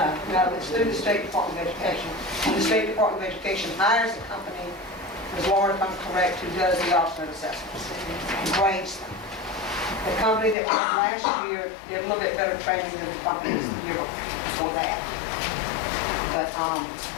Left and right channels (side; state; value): right; drops out; at 10.6 s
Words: No, it's through the State Department of Education. And the State Department of Education hires a company, Ms. Laura, if I'm correct, who does the alternate assessments and grades them. The company that went last year did a little bit better training than the companies the year before that. But